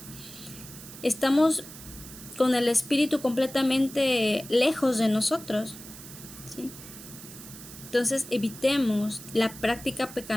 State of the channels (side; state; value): right; noise; hiss, 15 dB below the sound